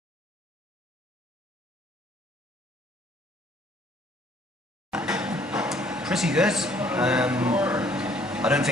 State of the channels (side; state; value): both; normal; correlation 0.61